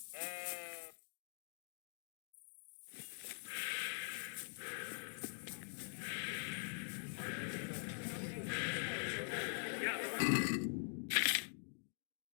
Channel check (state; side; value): silent; right; digital silence